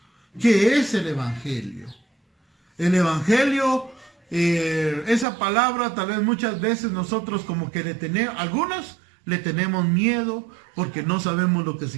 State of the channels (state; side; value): drops out; left; at 5.2 s